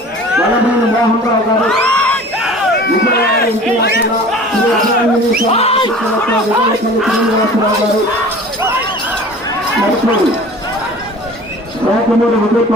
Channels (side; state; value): both; normal; correlation 0.42